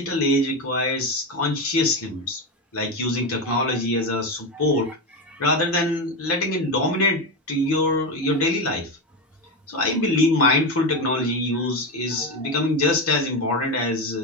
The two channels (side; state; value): both; normal; correlation 0.15